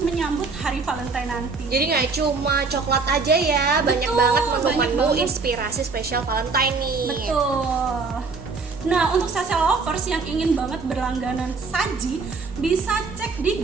menyambut hari Valentine nanti. Jadi nggak cuma coklat aja ya, banyak banget menu-menu banget. Inspirasi spesial Valentine nih. Betul. Nah, untuk sase lovers yang ingin banget berlangganan saji, bisa cek di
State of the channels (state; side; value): quieter; left; 4.4 dB